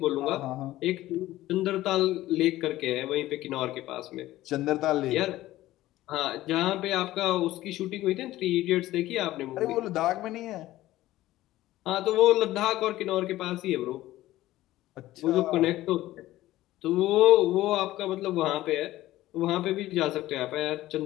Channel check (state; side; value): quieter; right; 15.7 dB